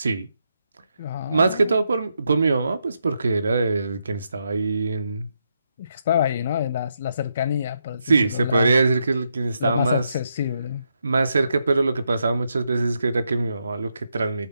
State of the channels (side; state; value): both; inverted; correlation -0.81